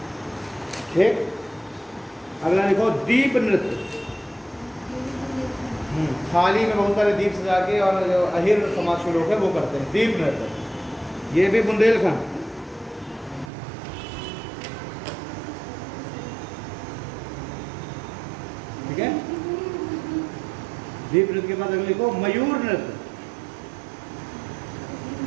ठीक। अगला लिखो दीप नृत्य। थाली में बहुत सारे दीप सजा के, और जो अहिर समाज के लोग हैं वो करते हैं दीप नृत्य, ये भी बुंदेलखंड। ठीक है, दीप नृत्य के बाद अगले लिखो मयूर नृत्य।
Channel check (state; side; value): drops out; left; at 13.5 s